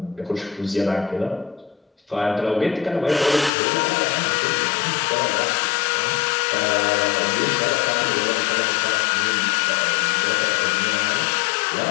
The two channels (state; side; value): drops out; right; at 3.5 s